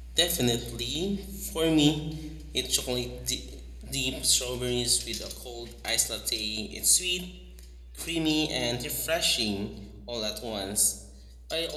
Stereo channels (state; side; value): identical; both; correlation 1.00